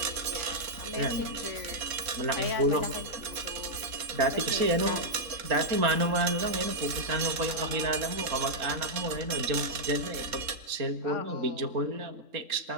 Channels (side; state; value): left; late; 3.7 ms